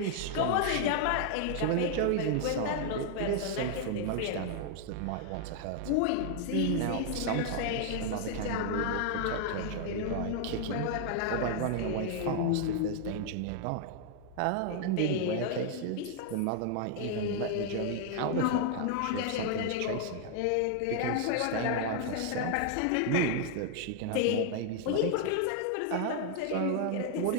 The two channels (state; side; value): different; both; correlation 0.00